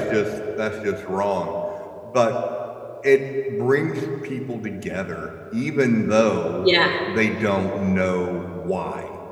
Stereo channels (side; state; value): both; identical; correlation 1.00